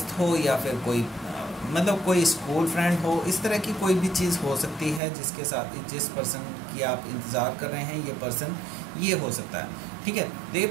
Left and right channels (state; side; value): drops out; left; at 5.0 s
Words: हो या फिर कोई मतलब कोई स्कूल फ्रेंड हो, इस तरह की कोई भी चीज़ हो सकती है जिसके साथ जिस पर्सन की आप इंतज़ार कर रहे हैं ये पर्सन ये हो सकता है, ठीक है। तो ये